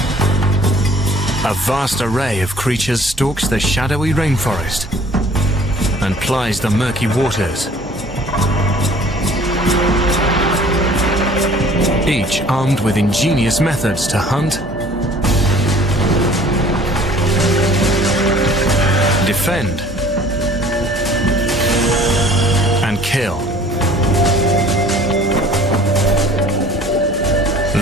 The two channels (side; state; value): both; normal; correlation 0.51